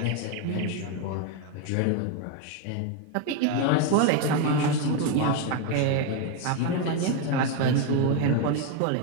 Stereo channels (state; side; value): different; both; correlation 0.02